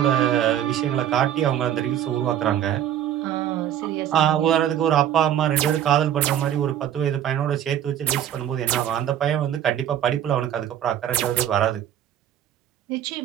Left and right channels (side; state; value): left; quieter; 10.6 dB